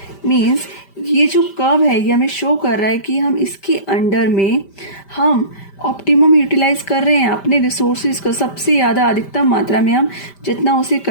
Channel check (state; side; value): late; right; 5.1 ms